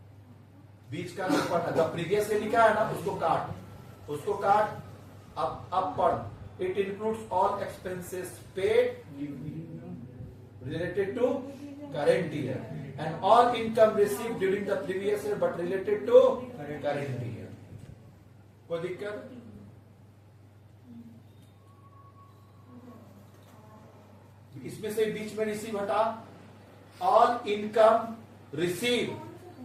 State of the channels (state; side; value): identical; both; correlation 1.00